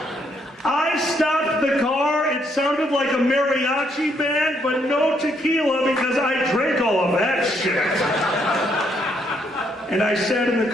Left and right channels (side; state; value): both; normal; correlation 0.72